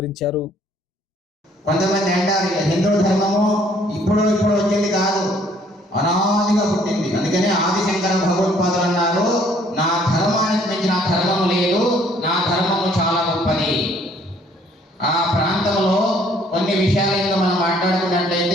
కొంతమంది అంటారు హిందూ ధర్మము ఇప్పుడు వచ్చింది కాదు, అనాదిగా పుట్టింది. అందుకనే ఆదిశంకర భగవత్పాదులు అన్నారు, నా ధర్మానికి మించిన ధర్మం లేదు, నా ధర్మము చాలా గొప్పది. ఆ ప్రాంతంలో కొన్ని విషయాలను మనం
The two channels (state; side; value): normal; both; correlation 0.61